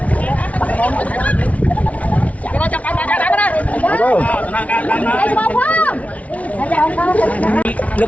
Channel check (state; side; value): late; right; 0.067 ms